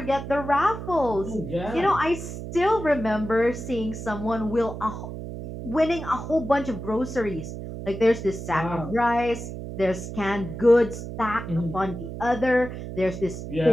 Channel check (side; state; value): right; noise; hum, 8 dB below the sound